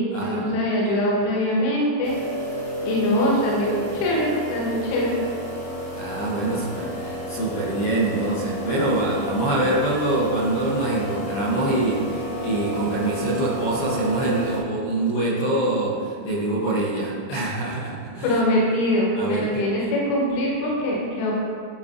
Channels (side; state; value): right; late; 29 ms